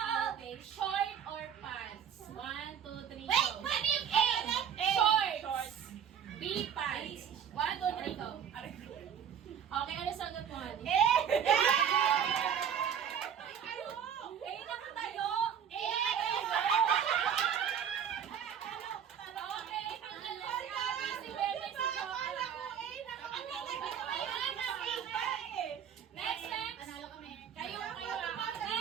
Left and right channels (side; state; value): left; quieter; 8.5 dB